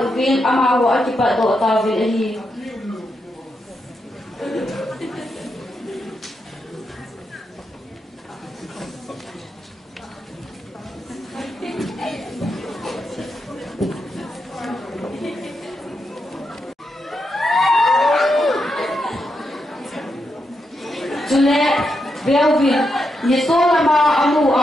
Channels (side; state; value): both; normal; correlation 0.84